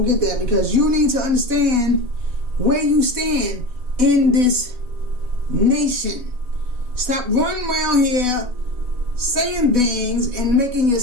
because you need to understand where you stand in this nation. Stop running around here saying things and making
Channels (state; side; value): late; left; 4.1 ms